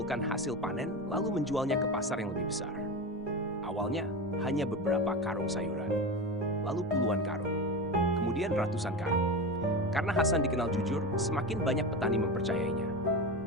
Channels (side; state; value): both; normal; correlation 0.23